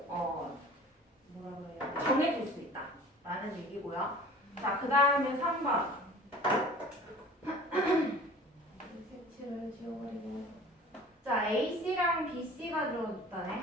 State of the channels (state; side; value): normal; both; correlation 0.44